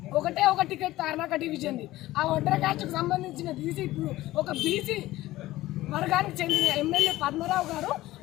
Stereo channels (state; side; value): quieter; right; 16.7 dB